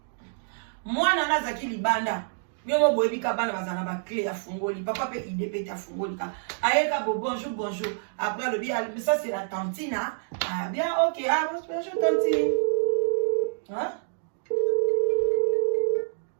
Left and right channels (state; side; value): silent; left; digital silence